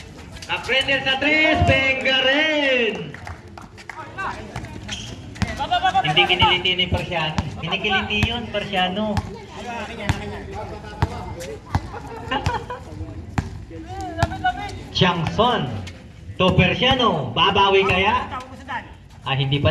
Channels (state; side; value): identical; both; correlation 1.00